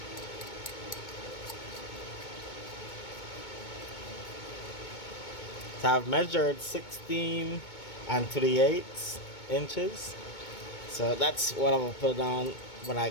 So I've measured 16 3/8 inches. So that's what I'm going to put on when I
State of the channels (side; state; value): right; late; 2.2 ms